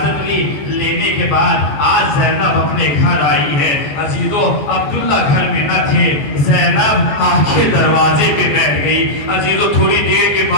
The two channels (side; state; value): right; late; 14 ms